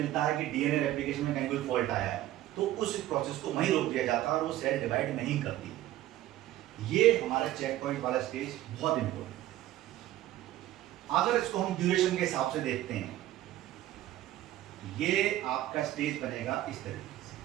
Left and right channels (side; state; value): left; quieter; 14.3 dB